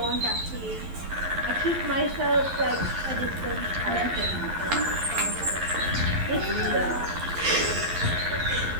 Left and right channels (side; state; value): left; late; 11 ms